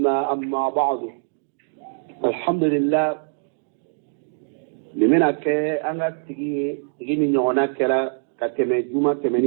أما بعد الحمد لله لمن أنا تجي من هناك كتمة جمعة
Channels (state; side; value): silent; left; digital silence